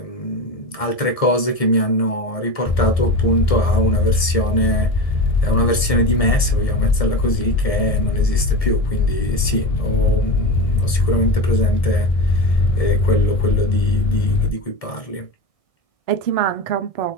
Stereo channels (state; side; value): late; right; 1.7 ms